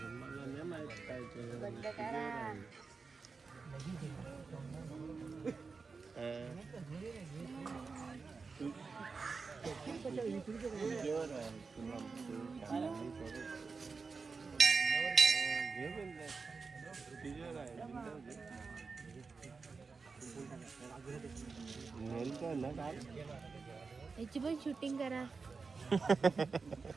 बंद करा याची पण शूटिंग करा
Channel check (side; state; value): left; quieter; 4.6 dB